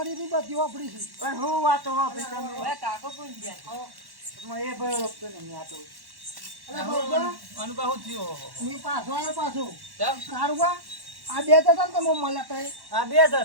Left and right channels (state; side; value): late; left; 1.1 ms